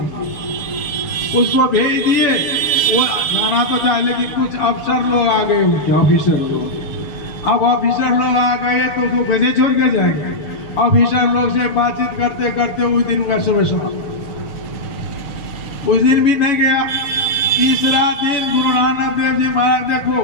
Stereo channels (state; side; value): late; right; 6.7 ms